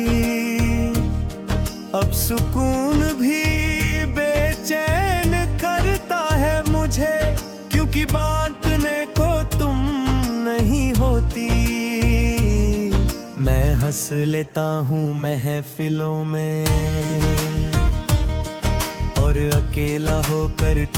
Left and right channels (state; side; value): identical; both; correlation 1.00